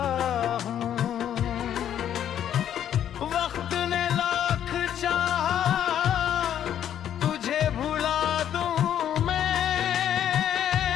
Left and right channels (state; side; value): quieter; right; 10.2 dB